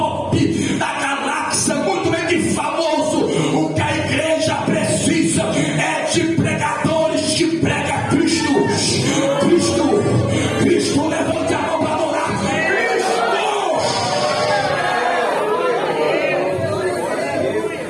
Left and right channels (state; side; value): identical; both; correlation 1.00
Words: da galáxia, muito bem que famoso. O que a igreja precisa é de pregadores que pregam Cristo. Cristo, Cristo, levante a mão para adorar